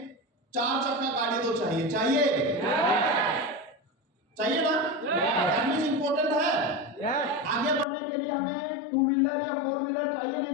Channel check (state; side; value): drops out; right; at 7.9 s